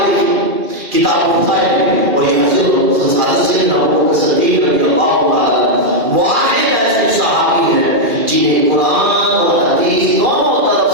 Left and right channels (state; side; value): late; left; 2.4 ms